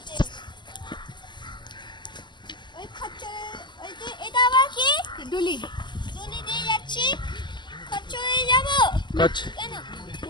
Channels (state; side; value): late; right; 0.22 ms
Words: ওই খচ্চরে, ওই যে এটা আবার কি ডুলি, ডুলি দিয়ে যাচ্ছি। খচ্চরে যাব কেন